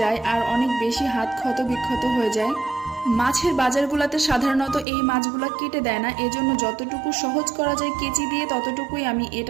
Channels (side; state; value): left; drops out; at 4.9 s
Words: যায় আর অনেক বেশি হাত ক্ষত বিক্ষত হয়ে যায়। মাছের বাজারগুলোতে সাধারণত এই মাছগুলো কেটে দেয় না, এজন্য যতটুকু সহজ করা যায় কেচি দিয়ে ততটুকুই আমি